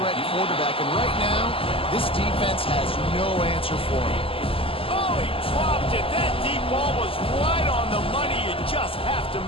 quarterback, and right now, this defense has no answer for him. Oh, he dropped it. That deep ball was right on the money. You just have to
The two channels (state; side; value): late; right; 0.26 ms